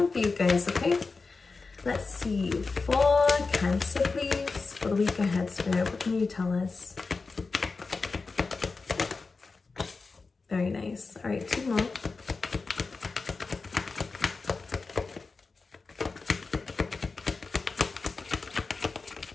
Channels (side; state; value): right; quieter; 4.2 dB